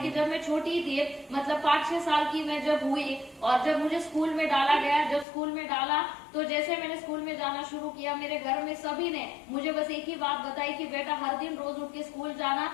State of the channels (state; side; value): drops out; right; at 5.2 s